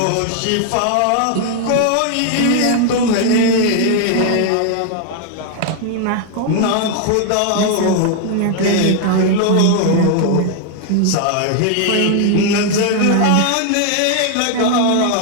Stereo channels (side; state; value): both; different; correlation 0.00